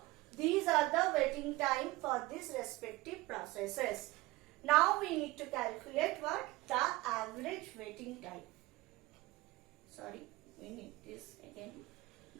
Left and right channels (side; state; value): left; quieter; 20.0 dB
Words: these are the waiting time for these respective processes. Now we need to calculate what? The average waiting time. Sorry, we need this again.